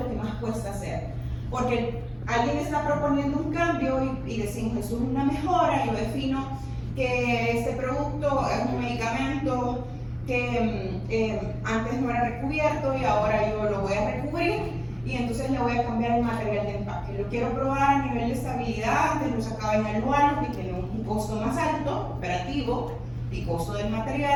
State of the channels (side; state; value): both; identical; correlation 1.00